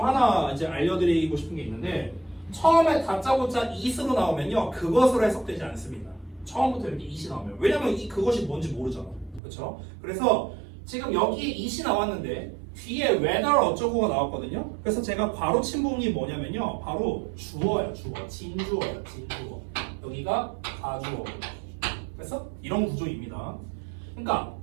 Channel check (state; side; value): drops out; left; at 9.4 s